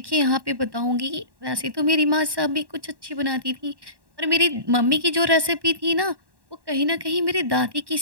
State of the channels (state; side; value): late; left; 1.1 ms